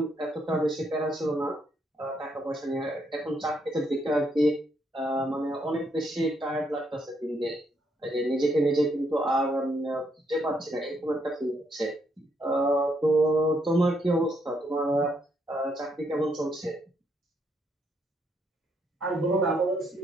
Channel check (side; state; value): both; normal; correlation 0.74